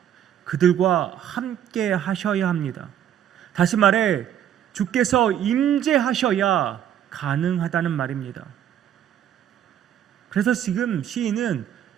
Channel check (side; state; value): left; quieter; 10.2 dB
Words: 그들과 함께 하셔야 합니다. 다시 말해 주께서 임재하셔야 가능하다는 말입니다. 그래서 지금 시인은